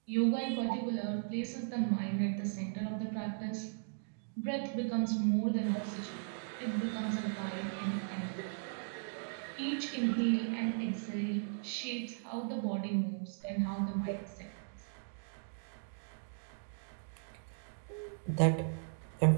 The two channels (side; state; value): left; silent; digital silence